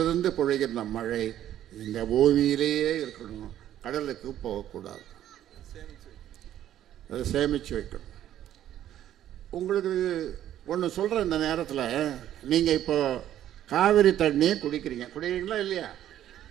பொழிகின்ற மழை இந்த பூமியிலேயே இருக்கணும், கடலுக்கு போகக்கூடாது. அதை சேமித்து வைக்கணும். உங்களுக்கு ஒன்று சொல்கிறேன், இந்த நேரத்தில் நீங்கள் இப்போ காவிரி தண்ணியை குடிக்கிறீங்களா இல்லையா?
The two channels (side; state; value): left; quieter; 11.7 dB